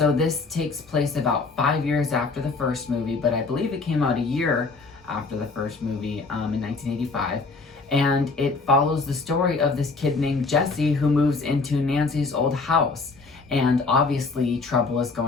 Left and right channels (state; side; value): quieter; right; 4.0 dB